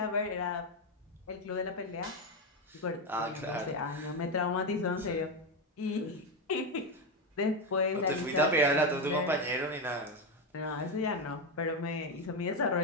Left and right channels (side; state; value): both; normal; correlation 0.10